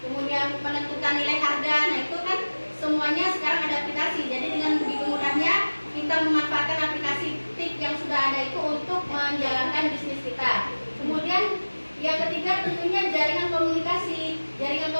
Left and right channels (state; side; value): inverted; both; correlation -1.00